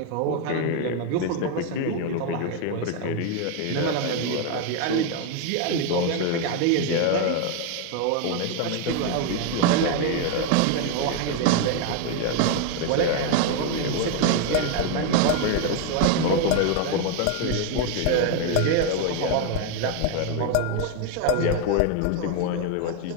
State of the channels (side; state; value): both; different; correlation 0.01